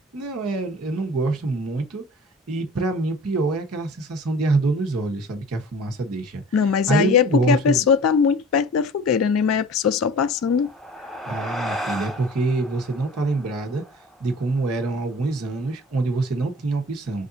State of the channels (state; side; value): normal; both; correlation 0.44